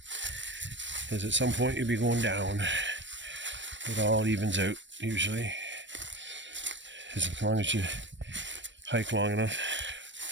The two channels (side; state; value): left; late; 0.53 ms